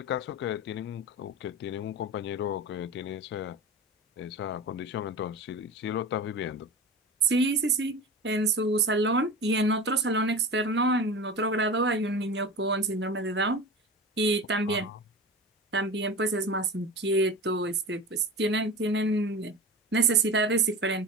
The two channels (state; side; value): normal; both; correlation 0.31